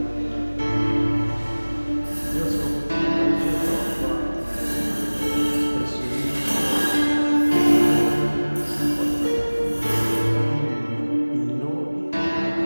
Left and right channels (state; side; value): inverted; both; correlation -1.00